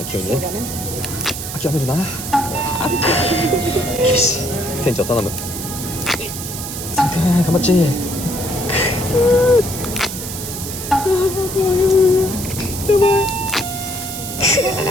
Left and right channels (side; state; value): right; noise; hiss, 7 dB below the sound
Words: 急にね。諦めるな。よし店長頼む。サムくん頑張っち。やばい。